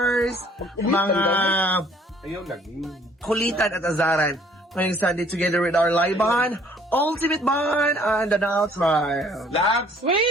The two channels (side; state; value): both; normal; correlation 0.58